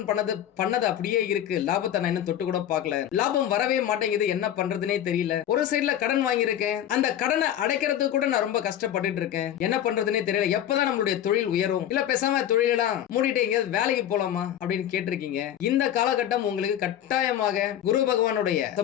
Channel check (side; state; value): right; quieter; 10.9 dB